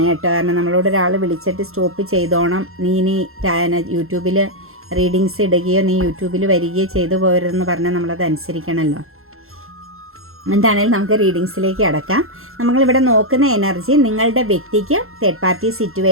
കേട്ടോ. കാരണം നമ്മളോട് ഒരാൾ വിളിച്ചിട്ട് സ്റ്റോപ്പ് ചെയ്തോണം, നീ ഇനി യൂട്യൂബിൽ റീഡിങ്സ് ഇടുകയോ നീ യൂട്യൂബിൽ വരികയോ ചെയ്തു പോരുതെന്ന് പറഞ്ഞാൽ നമ്മളത് അനുസരിക്കണമല്ലോ. എന്താണെങ്കിലും നമുക്ക് റീഡിങ്സിലേക്ക് അടക്കാം. നമ്മളിവിടെ നോക്കുന്ന എനർജി നിങ്ങളുടെ വ്യക്തിക്ക് തേർഡ് പാർട്ടി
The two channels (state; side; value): late; left; 0.62 ms